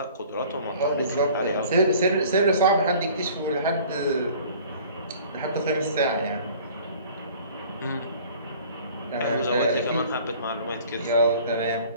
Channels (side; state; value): both; inverted; correlation -0.49